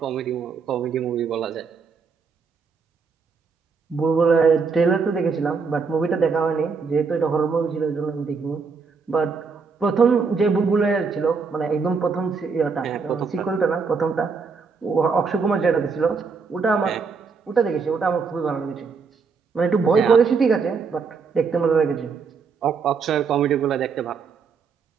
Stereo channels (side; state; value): left; quieter; 5.2 dB